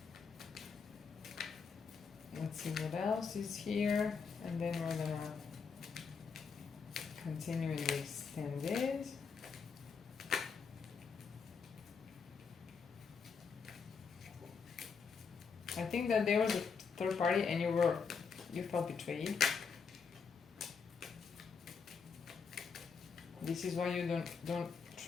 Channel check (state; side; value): quieter; right; 5.7 dB